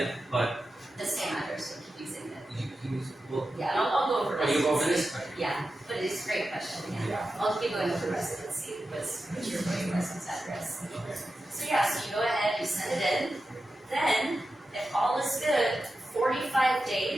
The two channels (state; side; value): normal; both; correlation 0.91